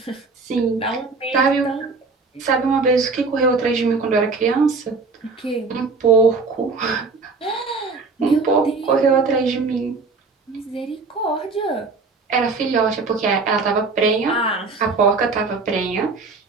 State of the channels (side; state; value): left; quieter; 4.1 dB